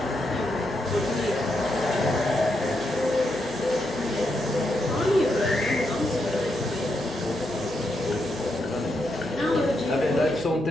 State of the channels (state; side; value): noise; left; hum, 22 dB below the sound